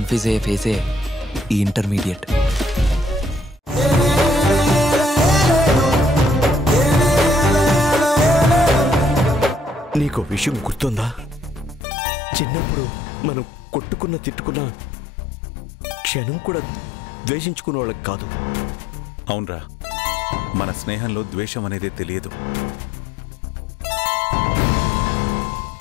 అయ్యే ఫేసే ఈ ఇంటర్మీడియట్. నీకు విషయం గుర్తుందా? చిన్నప్పుడు మనం కొట్టుకున్న తిట్టుకున్న క్షణం కూడా ద్వేషించుకునే వాళ్ళకి కాదు. అవునరా, మన స్నేహంలో ద్వేషం అనేదే తెలియదు.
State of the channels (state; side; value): drops out; right; at 11.8 s